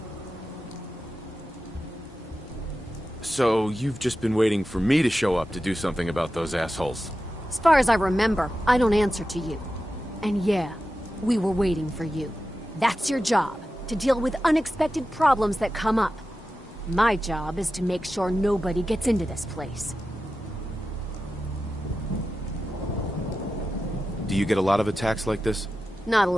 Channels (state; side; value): normal; both; correlation 0.92